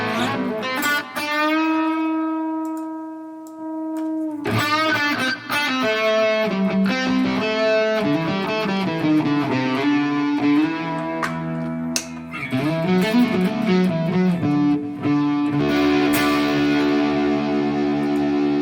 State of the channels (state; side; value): identical; both; correlation 1.00